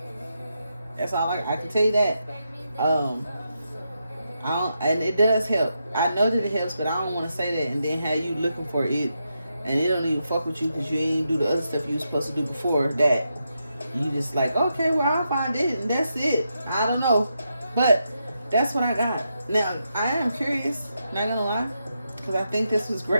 That's all I can tell you that. And it does help. I know that it helps, but I don't want to say that and then have you looking for it, and it don't even fuck with you because you ain't do the other stuff you were supposed to do before that. You just like, okay, well, I'll find it, and that's it. I don't know. But that's what I got. Now, I am curious, not gonna lie, because I think this was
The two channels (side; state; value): both; inverted; correlation -0.84